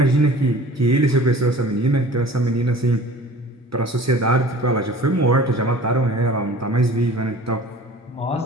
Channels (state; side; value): normal; both; correlation 0.44